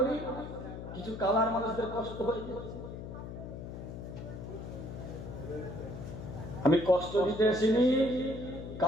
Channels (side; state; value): left; noise; hum, 9 dB below the sound